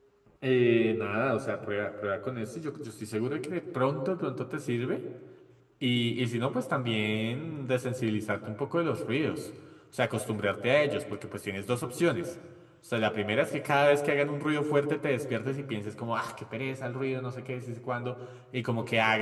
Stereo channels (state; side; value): identical; both; correlation 1.00